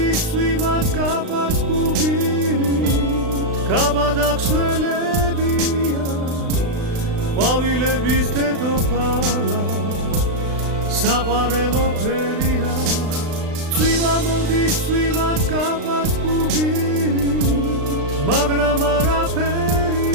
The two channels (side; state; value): left; late; 36 ms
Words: წვიმაც გაბაც გუგირით გაბადაქსველებია ყვავილების დედოფალა საყვარელო ფერია წვიმა მოდის წვიმაც გაბაც გუგირით მაგრამ